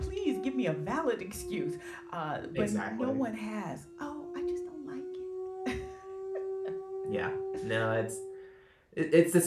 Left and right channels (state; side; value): identical; both; correlation 1.00